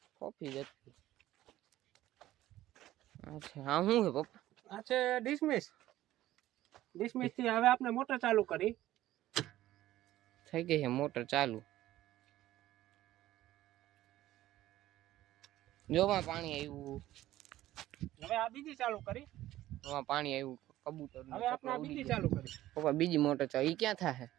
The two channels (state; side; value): quieter; left; 14.7 dB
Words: કોફી જ હતી અચ્છા હા શું છે પપ્પા આ છે ડિસમિસ થી હવે આપણે મોટર ચાલુ કરી થઈ ગઈ છે મોટર ચાલુ જોમાં પાણી આવ્યું હવે આ બીજી ચાલુ કરી જોમાં પાણી આવ્યું કબૂતર હવે આપણે આ બીજી ચાલુ કરી પપ્પા બીજી મોટર ચાલુ ઈ ક્યાં થાય